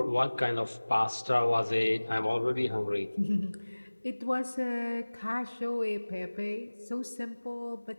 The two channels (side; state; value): both; inverted; correlation -1.00